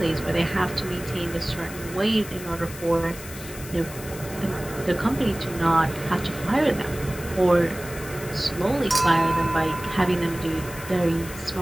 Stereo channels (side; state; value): left; noise; hiss, 14 dB below the sound